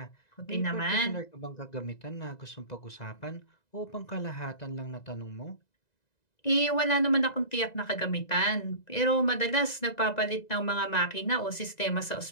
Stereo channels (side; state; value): right; late; 1.9 ms